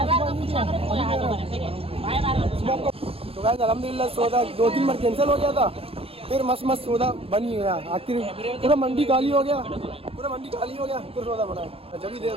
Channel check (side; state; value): left; late; 0.28 ms